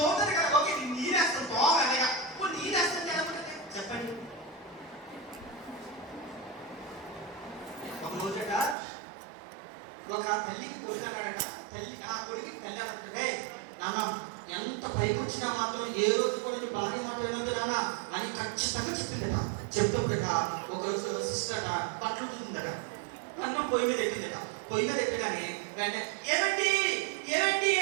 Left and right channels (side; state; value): left; drops out; at 8.8 s